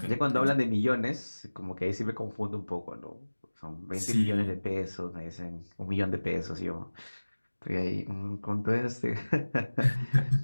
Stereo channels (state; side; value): inverted; both; correlation -1.00